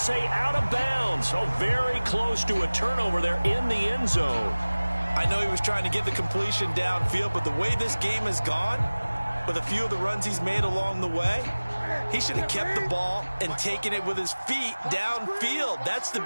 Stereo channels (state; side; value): inverted; both; correlation -1.00